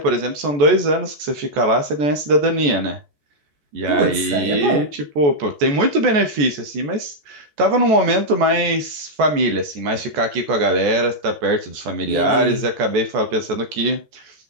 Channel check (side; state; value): left; late; 14 ms